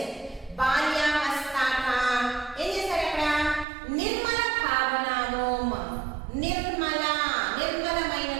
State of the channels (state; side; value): drops out; left; at 3.7 s